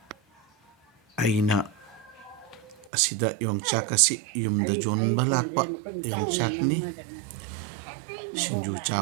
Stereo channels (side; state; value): left; drops out; at 2.9 s